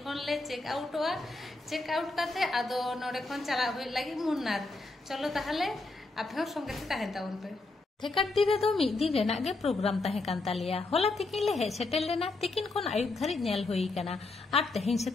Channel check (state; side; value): quieter; right; 3.3 dB